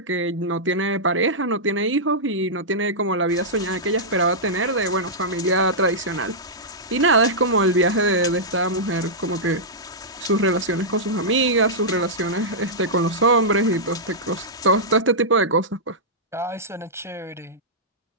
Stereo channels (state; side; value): normal; both; correlation -0.12